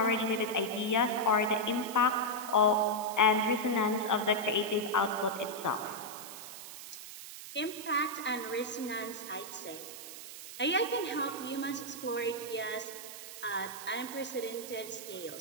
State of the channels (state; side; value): noise; right; hiss, 12 dB below the sound